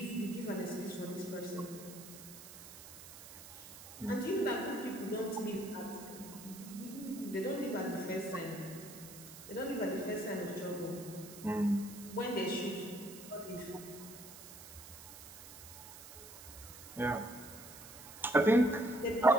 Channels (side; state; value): right; noise; hiss, 15 dB below the sound